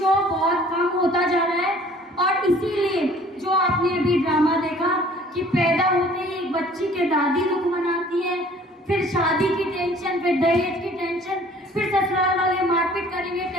बहुत कम होता जा रहा है। और इसीलिए जो आपने अभी ड्रामा देखा कि पैदा होते ही एक बच्ची के दादी दुख मनाती है, फिर शादी की टेंशन, फिर दहेज की टेंशन, फिर ससुराल वाले मारपीट करेंगे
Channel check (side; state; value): both; normal; correlation 0.53